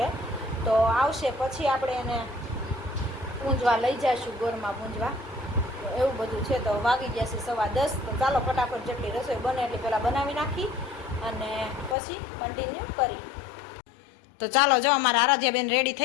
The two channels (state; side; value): drops out; right; at 12.0 s